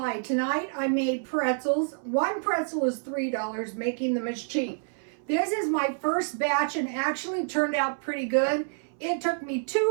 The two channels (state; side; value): silent; left; 59 dB below the other